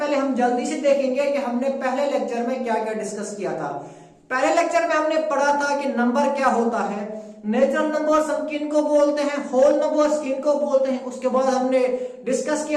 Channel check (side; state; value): both; identical; correlation 1.00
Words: हम जल्दी से देखेंगे कि हमने पहले लेक्चर में क्या क्या डिस्कस किया था। पहले लेक्चर में हमने पढ़ा था कि नंबर क्या होता है, नेचुरल नंबर्स हम किन को बोलते हैं, होल नंबर्स किन को बोलते हैं। उसके बाद हमने डिस्कस